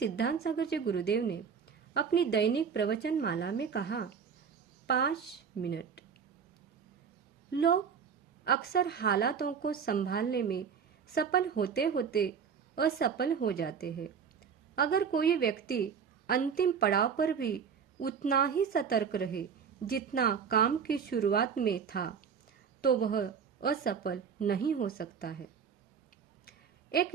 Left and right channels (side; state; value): left; quieter; 6.7 dB